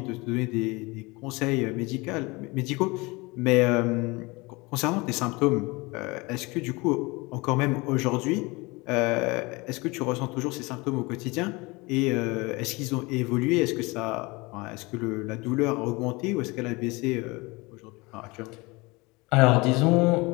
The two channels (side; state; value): right; quieter; 24.7 dB